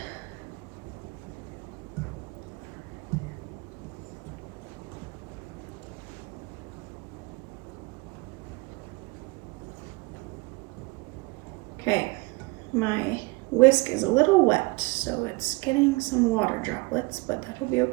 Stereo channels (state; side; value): quieter; left; 25.0 dB